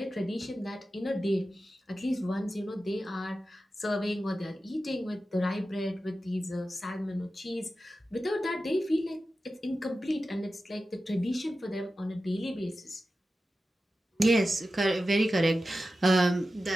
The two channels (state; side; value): normal; both; correlation 0.93